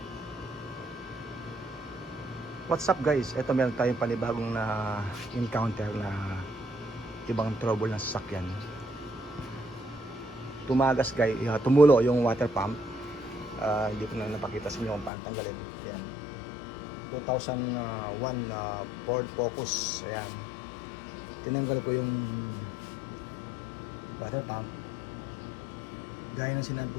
What's up guys? Ito meron tayong panibagong na encounter na ibang trouble ng sasakyan. Tumagas guys, tumulo yung water pump. Hindi ko na napakita sa inyo kung paano tanggalin. Ayan, 2001 Ford Focus. Ayan, tinanggal ko yung water pump. Gaya ng sinabi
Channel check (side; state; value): right; drops out; at 15.1 s